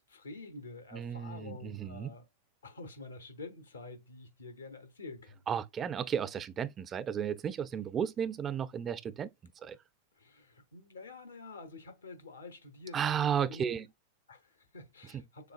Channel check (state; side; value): quieter; left; 7.0 dB